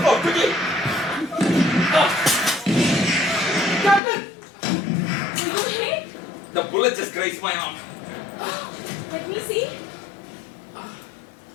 quickly! Captain! Are you hit? The bullet just grazed my arm. Let me see.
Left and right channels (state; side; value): drops out; right; at 4.0 s